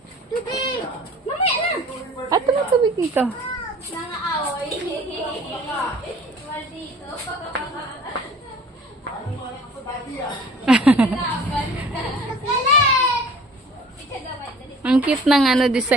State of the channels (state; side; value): normal; both; correlation 0.48